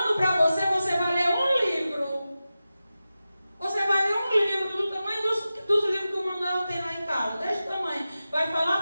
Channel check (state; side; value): inverted; both; correlation -0.94